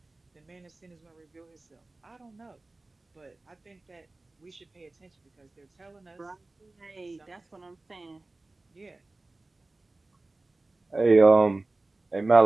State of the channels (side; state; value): left; quieter; 3.1 dB